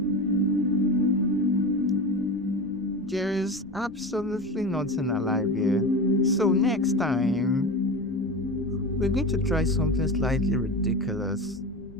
There is absolutely nothing alive here. So next time, we're going to try something slightly ridiculous.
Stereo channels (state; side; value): noise; left; rumble, 23 dB below the sound